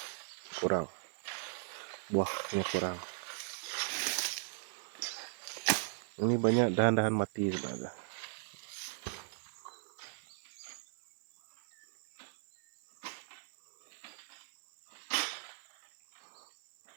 Kurang. Buahnya kurang. Ini banyak dahan-dahan mati sebenarnya.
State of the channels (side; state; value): left; silent; 53 dB below the other